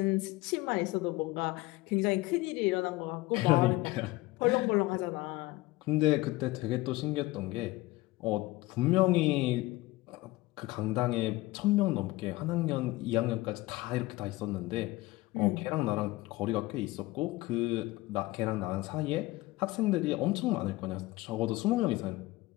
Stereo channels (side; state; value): right; quieter; 19.9 dB